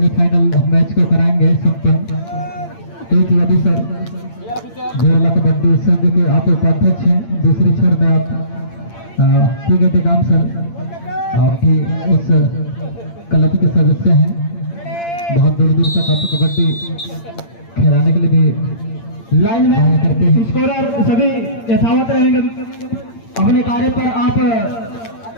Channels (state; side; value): late; right; 8.8 ms